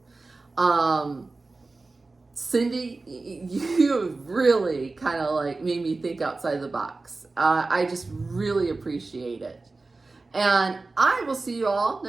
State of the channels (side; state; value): left; quieter; 3.6 dB